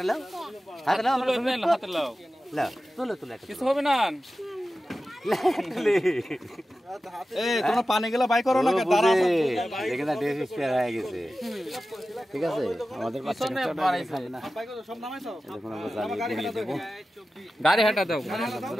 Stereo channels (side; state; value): both; normal; correlation 0.94